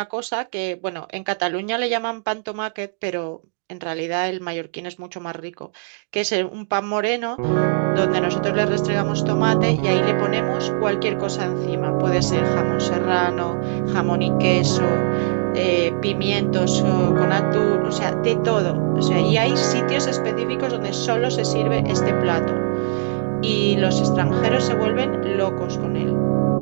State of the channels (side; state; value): left; silent; digital silence